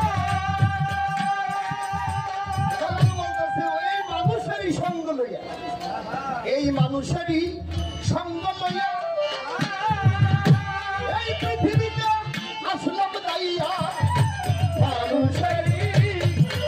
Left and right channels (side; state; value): both; identical; correlation 1.00